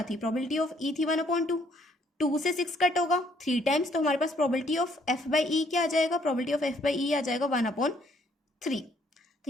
थी, प्रोबेबिलिटी ऑफ ई थी 1/2, 2 से 6 कट होगा 3 टाइम्स, तो हमारे पास probability of F by E क्या आ जाएगा, प्रोबेबिलिटी ऑफ एफ बाई ई आ जाएगा 1/3। तो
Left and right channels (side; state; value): both; normal; correlation 0.66